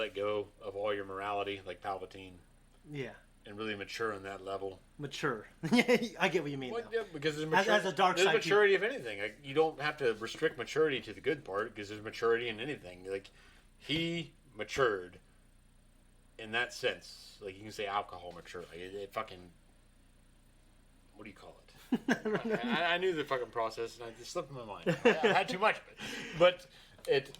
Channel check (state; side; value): identical; both; correlation 1.00